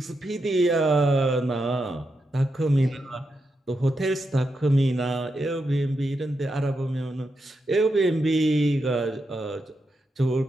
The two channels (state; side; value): normal; both; correlation 0.85